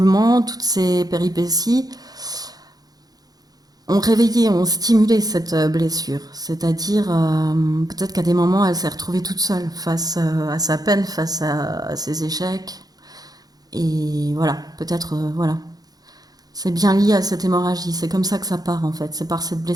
toutes ces péripéties ont réveillé, ont stimulé cette blessure. C'est-à-dire, peut-être qu'à des moments, elle s'est retrouvée toute seule face à sa peine, face à ses échecs. Et voilà, peut-être, voilà. C'est bien lié à cette hémorragie. C'est comme ça que ça part, en fait. C'est par cette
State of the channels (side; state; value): left; late; 0.19 ms